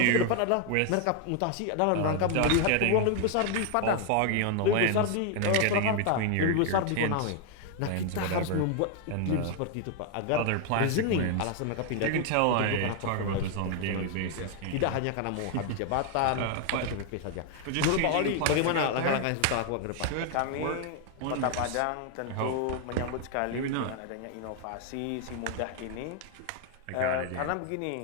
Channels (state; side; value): different; both; correlation 0.00